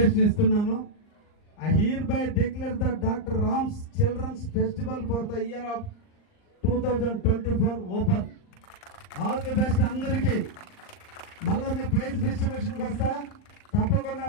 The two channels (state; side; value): late; right; 39 ms